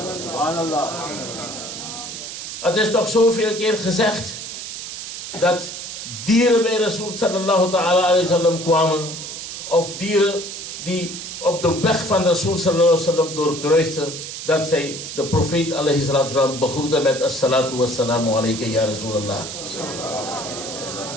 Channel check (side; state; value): right; noise; hiss, 8 dB below the sound